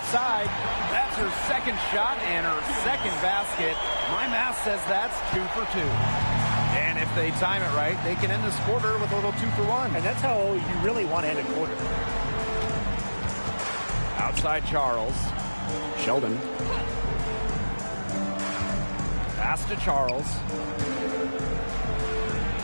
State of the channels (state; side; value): inverted; both; correlation -1.00